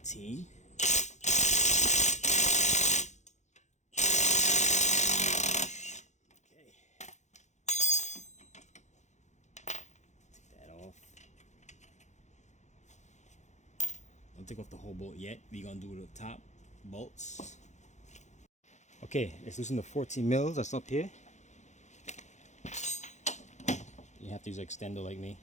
Don't take off the whole bolt yet. We're gonna do the top bolts. Okay, let's loosen the 14 mils that's up here. You have to use an extender like me.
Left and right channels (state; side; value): late; right; 0.34 ms